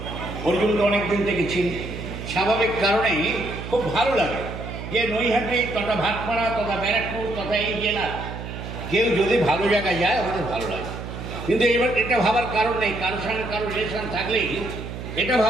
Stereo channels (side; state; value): right; noise; hum, 9 dB below the sound